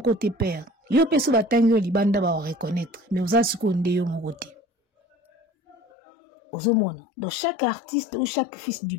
te père. Yo peso batangi yo libanda ba reconnaître. Mais ozala siko nde yo moko te. Ozomona. Donc chaque artiste ou chaque fils du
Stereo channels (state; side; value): drops out; right; at 5.8 s